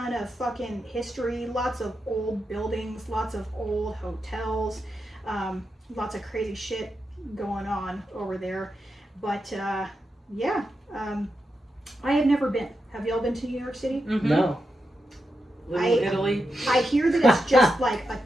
of fucking history, lots of old buildings, lots of old hotels, lots of crazy shit going on over there. But yeah, I have never been. Have y'all been to New York City? Mm-hmm. No. Little Italy. I hear that it's just like a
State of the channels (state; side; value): normal; both; correlation 0.87